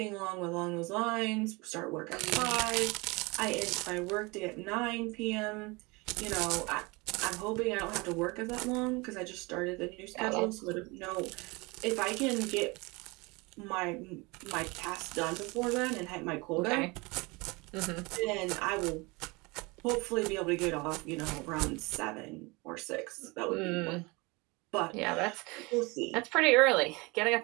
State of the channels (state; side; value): quieter; left; 25.8 dB